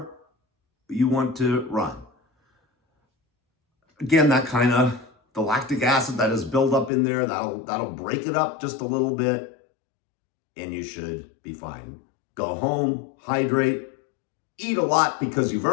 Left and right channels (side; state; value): right; drops out; at 6.9 s